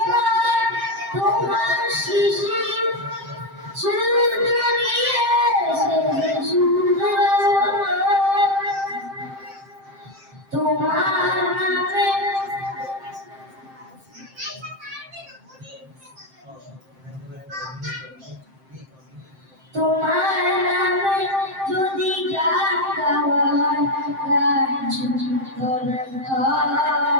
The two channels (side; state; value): left; late; 7.6 ms